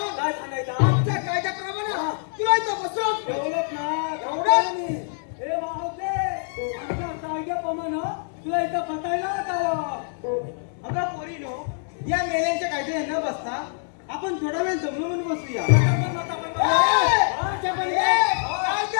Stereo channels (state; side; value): silent; right; digital silence